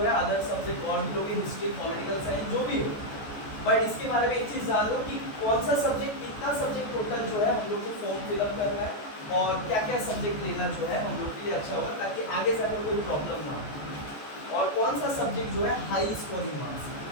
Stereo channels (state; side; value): late; right; 14 ms